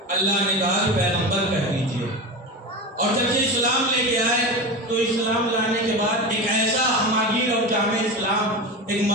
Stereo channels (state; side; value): normal; both; correlation 0.24